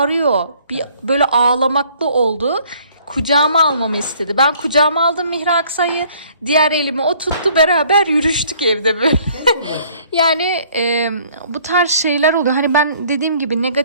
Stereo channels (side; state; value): both; inverted; correlation -0.58